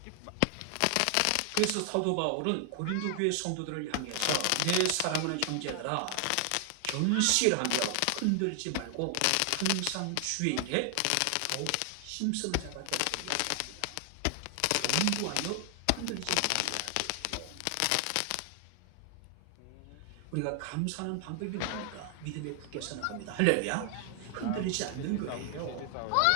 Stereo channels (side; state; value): both; different; correlation 0.00